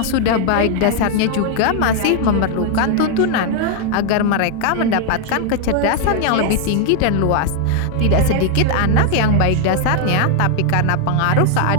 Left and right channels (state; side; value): different; both; correlation 0.00